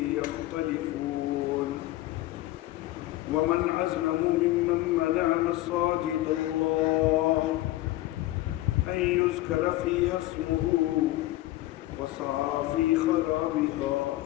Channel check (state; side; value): quieter; right; 16.6 dB